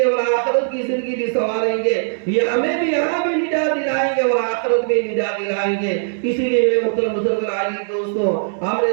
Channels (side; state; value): left; silent; digital silence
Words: اور آخرت کی زندگی بھی سنواریں گے. یہ ہمیں بھی یہاں بھی نجات دلائیں گے اور آخرت میں نجات دلائیں گے. اسی لیے میرے محترم بزرگ عزیز دوستوں، ہم نے